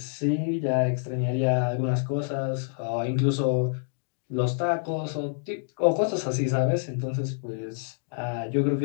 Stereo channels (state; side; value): silent; right; digital silence